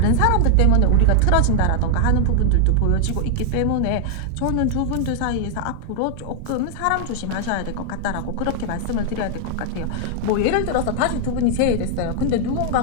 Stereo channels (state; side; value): different; both; correlation -0.01